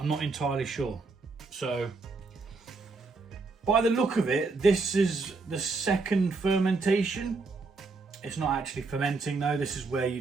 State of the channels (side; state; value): left; quieter; 3.9 dB